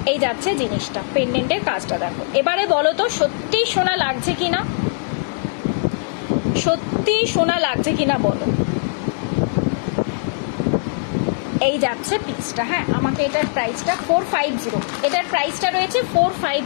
এই যাচ্ছে জিনিসটা, পেন্ডেন্টের কাজটা দেখো। এবারে বলো তো সত্যি সোনা লাগছে কিনা, সত্যি সোনা লাগছে কিনা বলো। এই যাচ্ছে পিসটা। হ্যাঁ, আমাকে এটার প্রাইসটা 450, এটার প্রাইসটা রয়েছে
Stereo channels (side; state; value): right; silent; 62 dB below the other